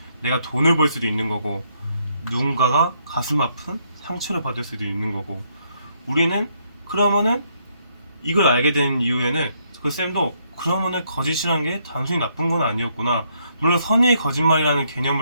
내가 돈을 벌 수도 있는 거고, 누군가가 가슴 아픈 상처를 받을 수도 있는 거고. 우리는 그러면은 이걸 알게 된 이후에는 그 쌤도 그러면은 거짓이라는 게 단순히 나쁜 건 아니었구나. 물론 선의의 거짓말이라는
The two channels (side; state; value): both; inverted; correlation -0.72